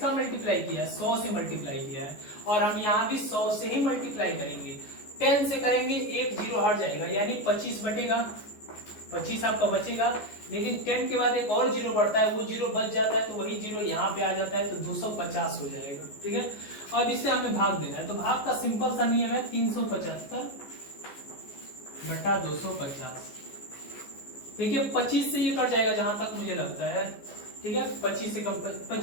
मल्टीप्लाई किया है, 100 से मल्टीप्लाई किया है, और हम यहाँ भी 100 से ही मल्टीप्लाई करेंगे। 10 से करेंगे, एक जीरो हट जाएगा, यानी 25 बटेगा, 25 आपका बचेगा। लेकिन 10 के बाद एक और जीरो बढ़ता है, वो जीरो बच जाता है, तो वही जीरो यहाँ पे आ जाता है, तो 250 हो जाएगा। ठीक है, अब इससे हमें भाग देना है, तो भाग का सिंपल सा नियम है 375 बटा 250। देखिए 25 से ये कट जाएगा जहां तक मुझे लगता है। ठीक है, 25 से कम,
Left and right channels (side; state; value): right; late; 14 ms